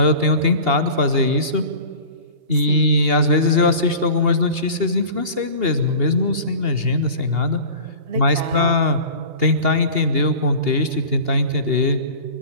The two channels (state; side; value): late; left; 2.8 ms